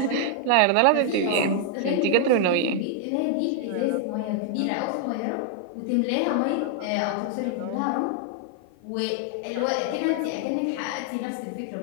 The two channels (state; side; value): different; both; correlation 0.00